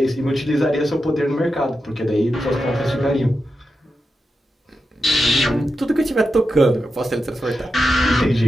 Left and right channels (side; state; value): both; normal; correlation 0.89